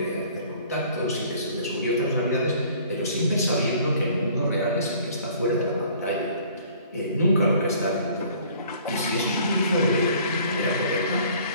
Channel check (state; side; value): inverted; both; correlation -0.54